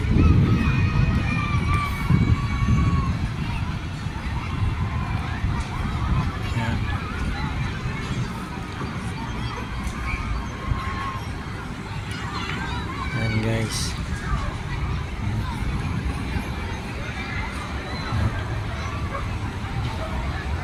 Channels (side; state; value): both; identical; correlation 1.00